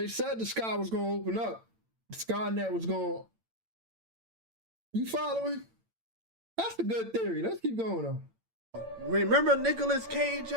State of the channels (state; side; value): late; left; 8.9 ms